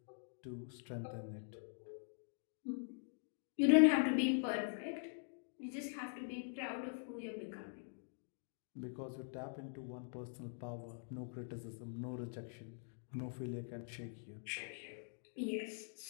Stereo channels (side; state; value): right; silent; digital silence